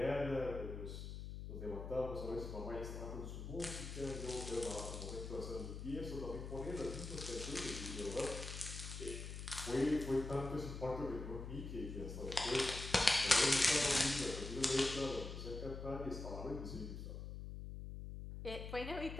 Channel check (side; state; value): left; noise; hum, 7 dB below the sound